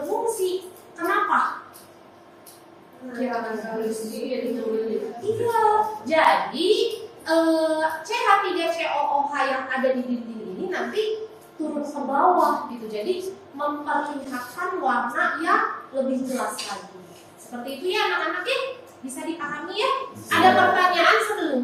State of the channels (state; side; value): identical; both; correlation 1.00